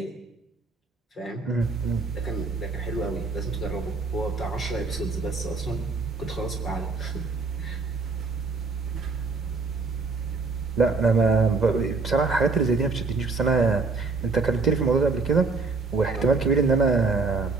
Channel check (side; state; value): left; quieter; 4.0 dB